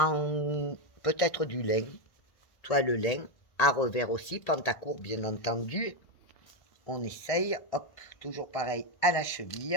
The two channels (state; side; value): late; right; 1.6 ms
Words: peut-être du lin, toile lin, à revers aussi, pantacourt bien entendu. On essaye, hop, toujours pareil à la